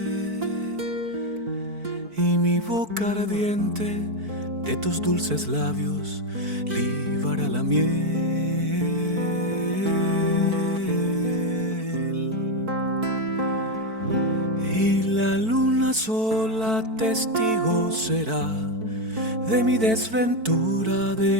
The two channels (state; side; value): late; left; 4.5 ms